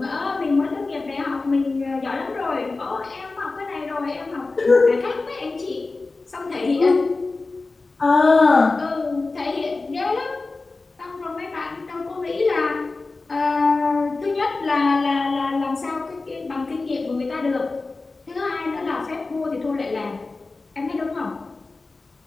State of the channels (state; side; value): quieter; right; 3.6 dB